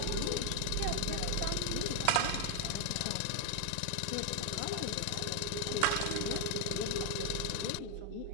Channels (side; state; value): both; different; correlation 0.00